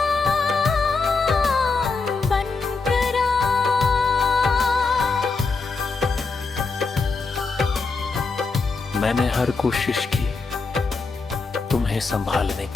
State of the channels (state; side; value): quieter; right; 4.2 dB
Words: मैंने हर कोशिश की तुम्हें संभालने